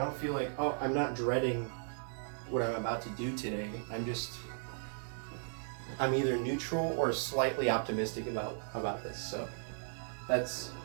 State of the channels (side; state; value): left; silent; digital silence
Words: feel like, oh, I'm not dreading what I'm about to do today. I'm either neutral or slightly optimistic about this. So that's